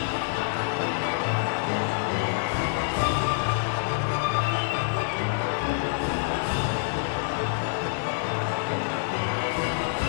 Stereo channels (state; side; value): silent; right; digital silence